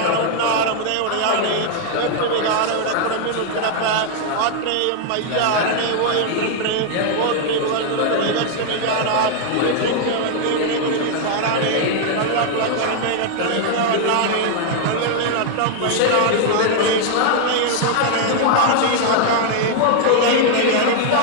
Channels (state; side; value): different; both; correlation 0.00